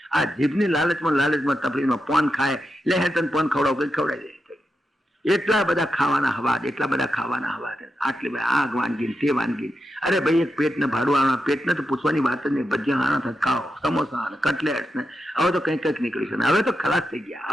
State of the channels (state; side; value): normal; both; correlation 0.87